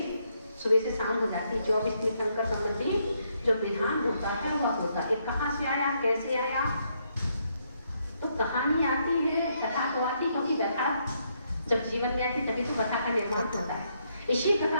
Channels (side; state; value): both; inverted; correlation -0.75